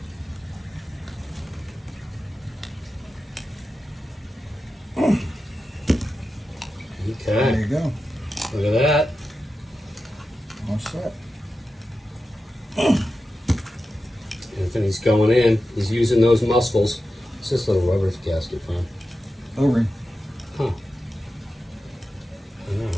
There Okay, you go. look at that. All set. Anthony's going in. He's using those muscles. What's this little rubber gasket from? O-ring. Huh. I know,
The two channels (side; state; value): both; normal; correlation 0.91